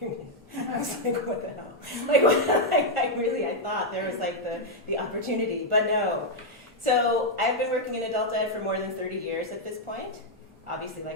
union. I was like, what the hell? I thought there was like the opportunity, but no. So I've been working in adult ed for more than 30 years at this point. Obviously,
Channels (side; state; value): both; normal; correlation -0.02